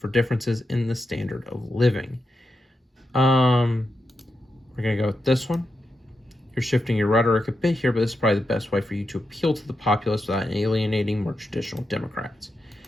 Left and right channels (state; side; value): normal; both; correlation 0.87